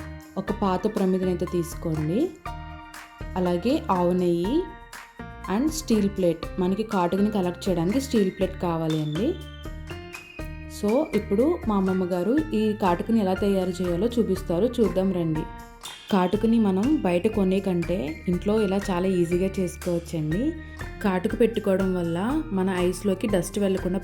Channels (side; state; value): both; identical; correlation 1.00